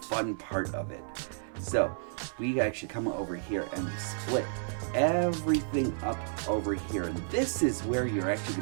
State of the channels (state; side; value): silent; left; 57 dB below the other